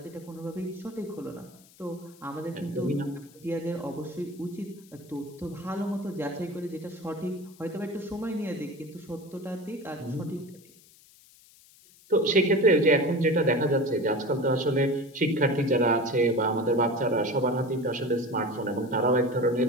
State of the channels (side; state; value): left; noise; hiss, 26 dB below the sound